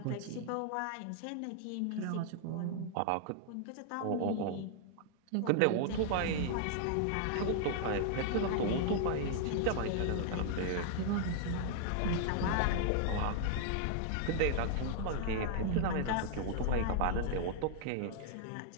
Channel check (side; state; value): both; different; correlation -0.01